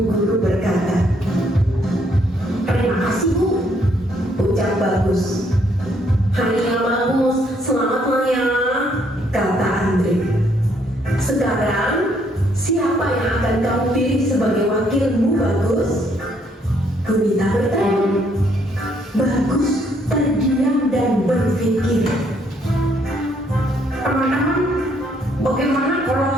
guru berkata. Terima kasih Bu, ucap Bagus. Hari yang bagus, selamat ya, kata Andre. Sekarang, siapa yang akan kamu pilih sebagai wakilmu, Bagus? Bunita bertanya. Bagus terdiam dan berpikir. Teman-teman, bagaimana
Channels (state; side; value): normal; both; correlation 0.69